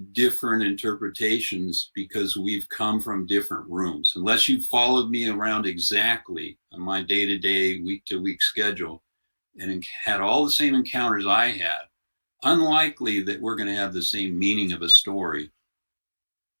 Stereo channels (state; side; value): inverted; both; correlation -1.00